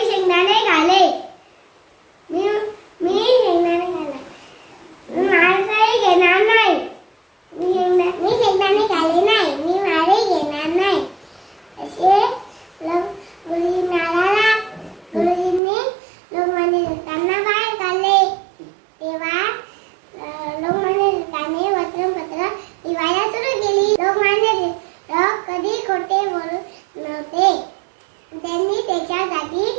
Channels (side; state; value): left; drops out; at 15.6 s